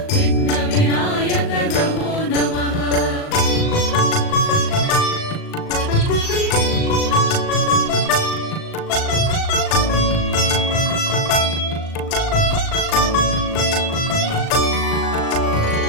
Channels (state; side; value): late; right; 38 ms